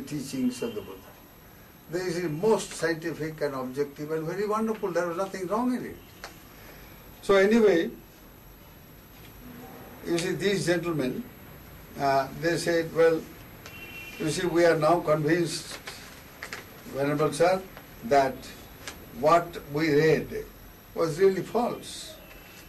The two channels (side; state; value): both; identical; correlation 1.00